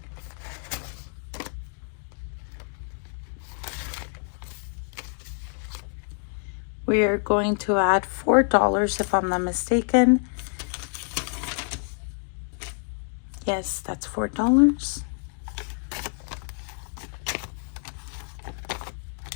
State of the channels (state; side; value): silent; right; 56 dB below the other